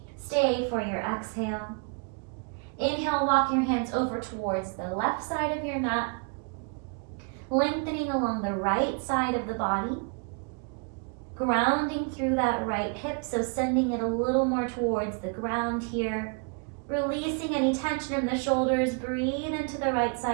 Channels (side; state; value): left; quieter; 37.1 dB